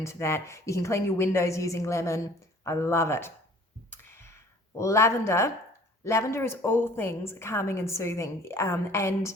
that. You can clean your windows using lemon. I love it. Lavender. Lavender is all things calming and soothing. And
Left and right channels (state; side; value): normal; both; correlation 0.52